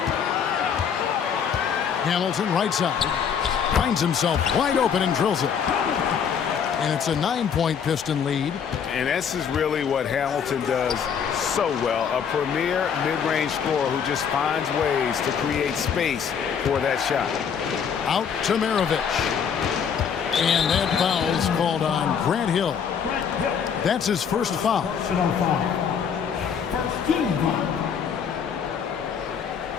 Hamilton right side. Finds himself wide open and drills it. And it's a 9-point Piston lead. And this is really what Hamilton does so well. A premier mid-range scorer who just finds ways to create space for that shot. Out to Maravich. And that foul's called on Grant Hill. That's his first foul. First team foul.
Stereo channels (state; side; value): quieter; right; 7.3 dB